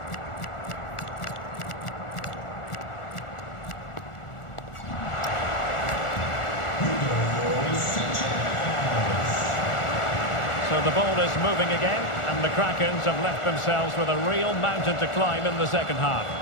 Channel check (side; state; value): right; late; 1.4 ms